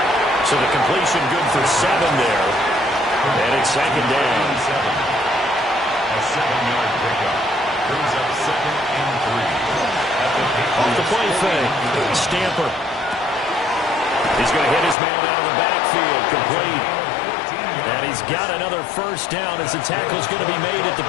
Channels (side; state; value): right; drops out; at 15.0 s